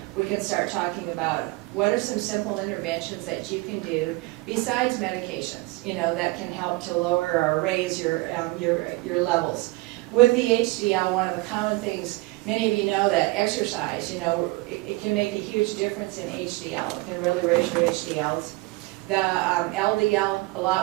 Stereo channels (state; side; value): quieter; left; 22.1 dB